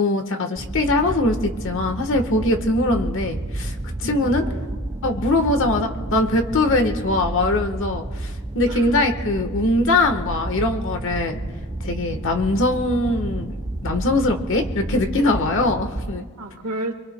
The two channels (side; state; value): both; normal; correlation 0.38